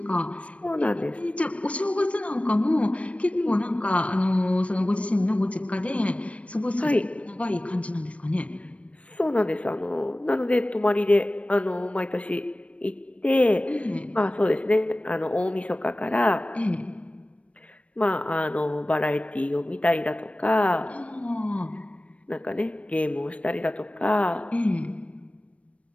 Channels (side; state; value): right; late; 0.063 ms